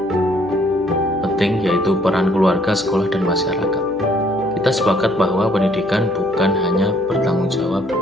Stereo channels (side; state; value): right; noise; hum, 22 dB below the sound